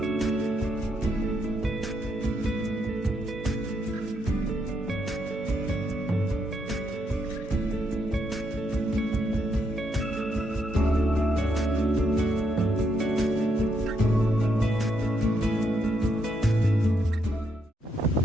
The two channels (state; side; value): normal; both; correlation 0.77